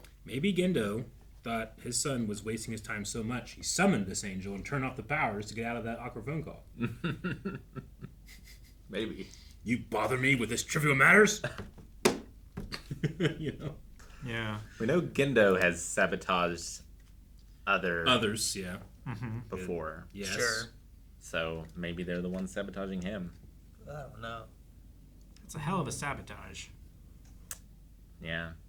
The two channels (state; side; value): identical; both; correlation 1.00